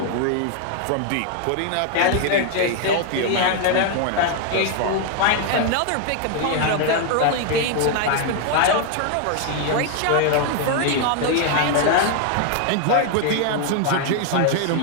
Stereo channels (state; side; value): different; both; correlation 0.00